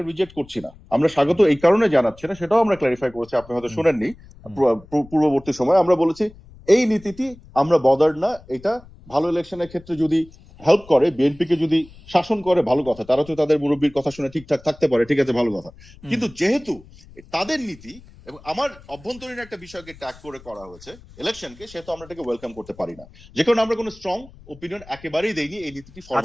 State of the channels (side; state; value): left; noise; rumble, 22 dB below the sound